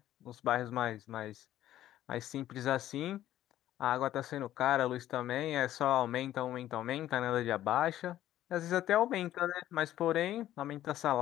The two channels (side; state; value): right; quieter; 13.0 dB